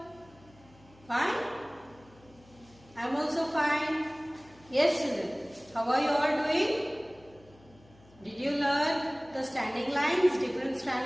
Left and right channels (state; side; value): noise; left; hum, 26 dB below the sound